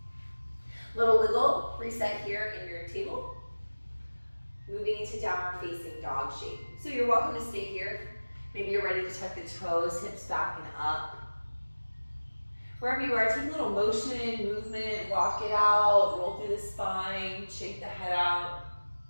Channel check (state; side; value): inverted; both; correlation -1.00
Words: Little wiggle, reset here in your table. Moving into downward facing dog shape. So you're welcome to stay here. Maybe you're ready to tuck the toes, hips back and up. Wherever you are, take a little motion, movement, walk it out, roll through the spine, shake the head out,